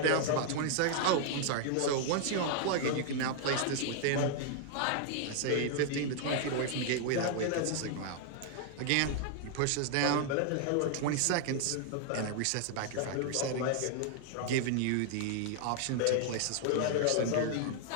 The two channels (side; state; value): both; different; correlation 0.00